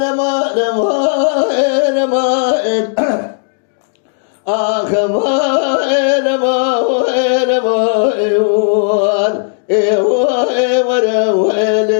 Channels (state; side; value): silent; right; 70 dB below the other